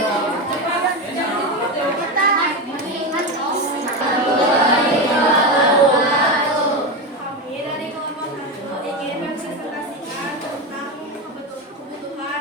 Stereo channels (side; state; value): both; normal; correlation 0.16